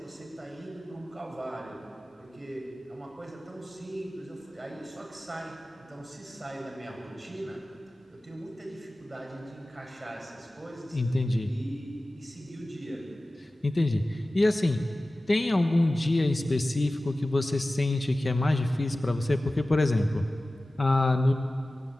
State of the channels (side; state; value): both; normal; correlation 0.96